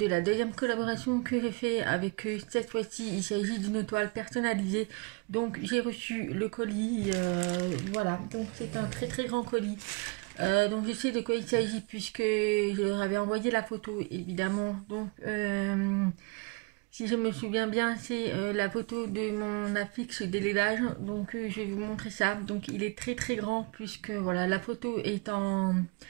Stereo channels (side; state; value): left; quieter; 31.5 dB